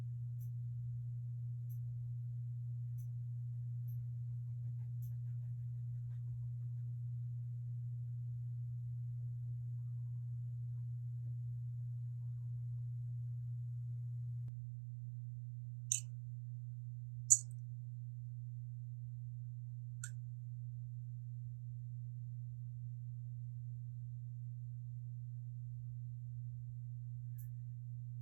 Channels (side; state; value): left; drops out; at 14.5 s